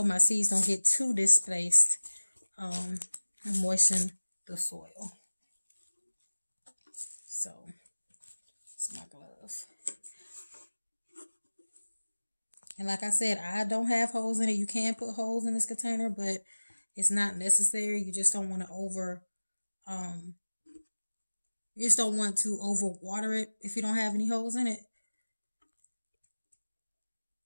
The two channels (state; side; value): inverted; both; correlation -1.00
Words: my seeds don't get too displaced. And moisten the soil. So, it's my glove. And like I said, I don't have holes in it. You can put holes in this container, but it's not necessary. You just don't want to you just don't want to overwater it if you don't have any holes in it.